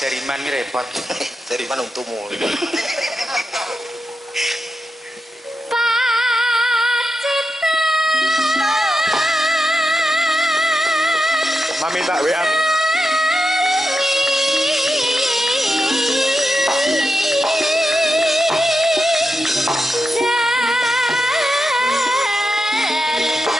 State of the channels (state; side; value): normal; both; correlation 0.88